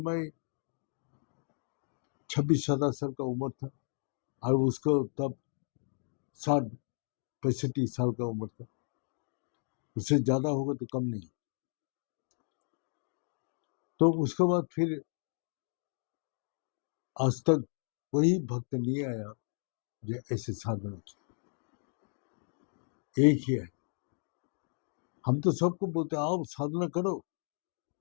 26-27 साल का उम्र था, और उसको तब 60-65 साल का उम्र था, उससे ज्यादा होगा तो कम नहीं। तो उसके बाद फिर आज तक वही भक्त नहीं आया जो ऐसे साधना की। एक ही है, हम तो सबको बोलते आओ साधना करो,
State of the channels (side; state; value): right; silent; 55 dB below the other